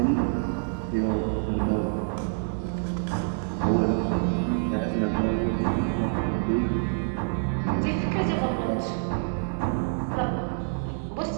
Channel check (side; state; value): left; silent; 60 dB below the other